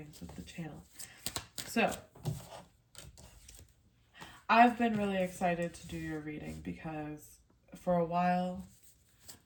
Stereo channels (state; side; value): identical; both; correlation 1.00